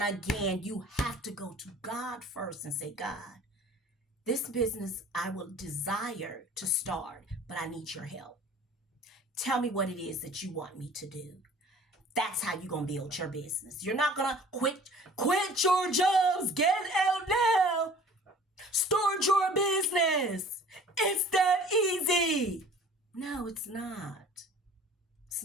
again, you have to go to God first and say, God, this business I will desire to start, but I need your help. Tell me what it is that you want me to do. That's how you're going to build your business. You're not going to quit your jobs, get out now, start your business. It's that easy. No, it's not. It's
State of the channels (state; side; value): normal; both; correlation 0.48